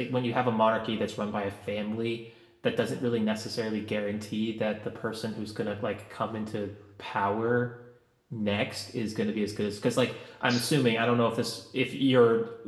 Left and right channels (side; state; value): both; identical; correlation 1.00